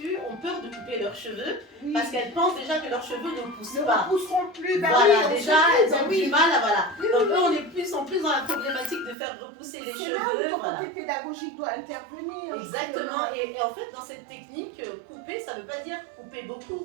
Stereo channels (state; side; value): drops out; left; at 9.2 s